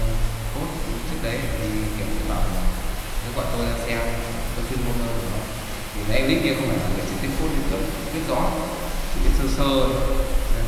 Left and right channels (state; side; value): identical; both; correlation 1.00